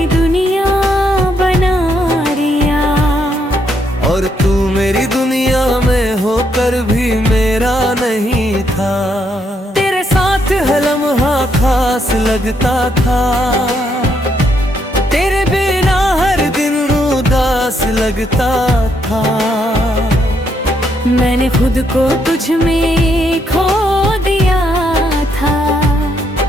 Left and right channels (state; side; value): normal; both; correlation 0.75